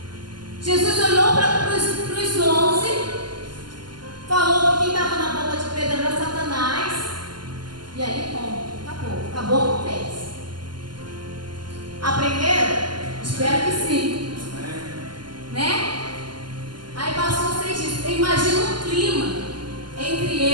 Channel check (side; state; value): left; late; 0.71 ms